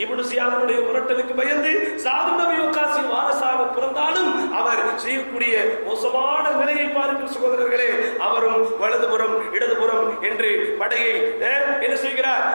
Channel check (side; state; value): both; inverted; correlation -1.00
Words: இப்னு ஜியாதுடைய மிரட்டலுக்கு பயந்து சாத் இப்னு அபீ வக்காஸின் வாரிசாக பிறந்தாலும் அவர் செய்யக்கூடிய மோசமான நிலையை பாருங்கள் சகோதரர்களே. அவரும் வலதுபுறம் இடதுபுறம் என்று படையை என்ன செய்கிறார்?